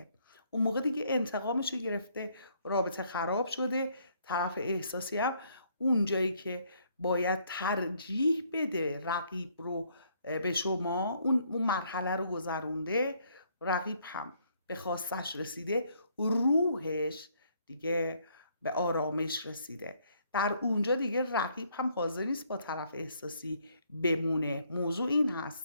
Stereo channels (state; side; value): inverted; both; correlation -0.68